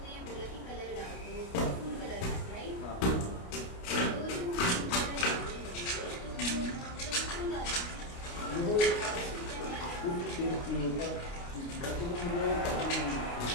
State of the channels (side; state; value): right; late; 29 ms